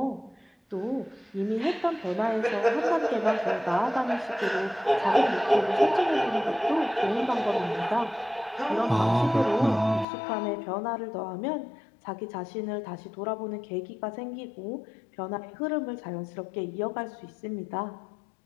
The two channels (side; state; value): right; drops out; at 10.1 s